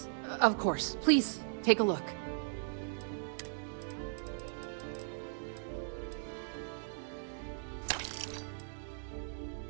of course. Please, take a look.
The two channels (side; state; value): left; silent; digital silence